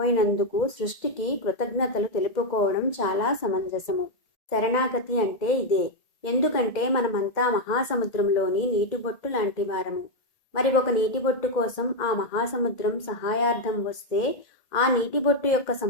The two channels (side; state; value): right; late; 2.1 ms